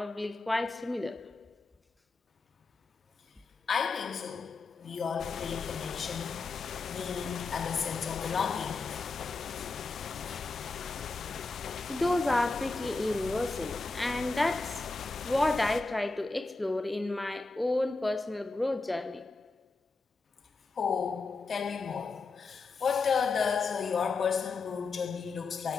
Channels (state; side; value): quieter; right; 3.8 dB